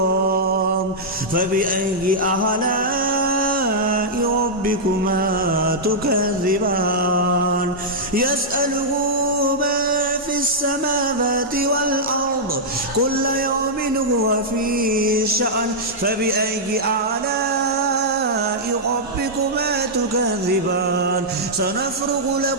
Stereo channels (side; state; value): both; normal; correlation -0.08